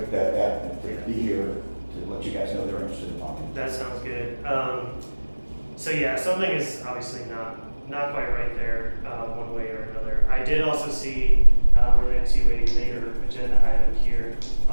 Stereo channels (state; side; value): inverted; both; correlation -1.00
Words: be here to let you guys know they're interested in talking. That sounds good. So yeah, something is obviously not quite right there, one way or another. I did also see, related to a later agenda item here,